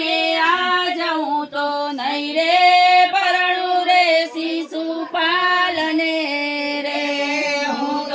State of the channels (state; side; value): identical; both; correlation 1.00